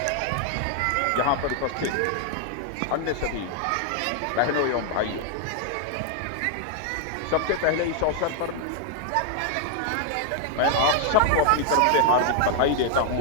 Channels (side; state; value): both; different; correlation 0.00